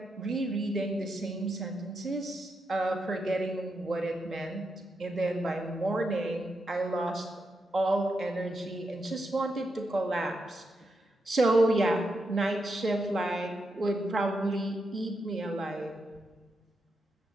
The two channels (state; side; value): normal; both; correlation 0.84